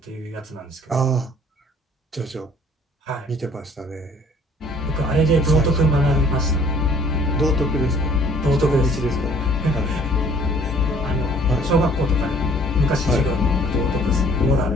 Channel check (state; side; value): normal; both; correlation 0.56